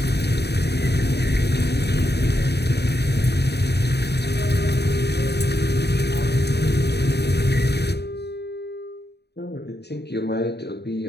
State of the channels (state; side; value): late; right; 0.48 ms